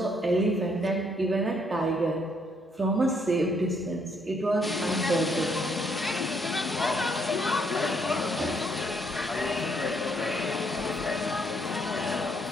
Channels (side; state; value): both; normal; correlation 0.70